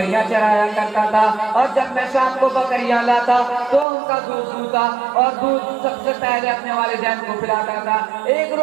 چرایا کرتا تھا اور جب میں شام کو بکریاں لاتا تو ان کا دودھ دوتا اور دودھ سب سے پہلے اپنے والدین کو پلاتا تھا. ایک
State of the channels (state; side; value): drops out; left; at 3.9 s